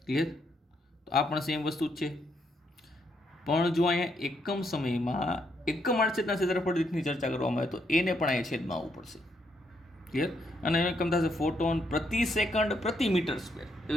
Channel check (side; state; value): both; normal; correlation 0.75